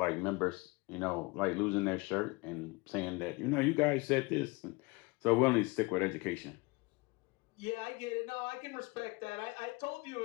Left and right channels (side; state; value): right; quieter; 25.2 dB